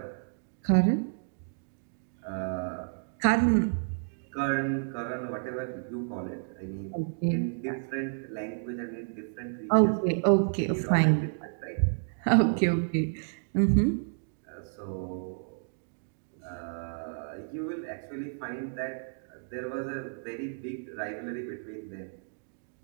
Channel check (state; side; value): silent; left; digital silence